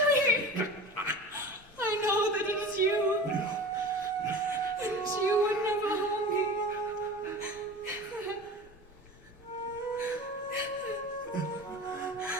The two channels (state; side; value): normal; both; correlation 0.34